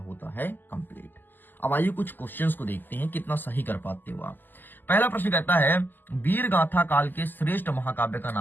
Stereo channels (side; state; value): right; late; 0.090 ms